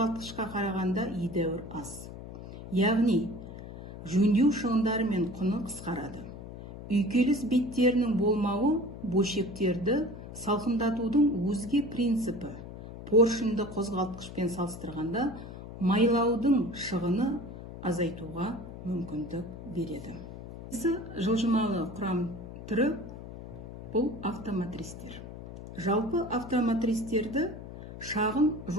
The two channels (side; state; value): left; noise; hum, 12 dB below the sound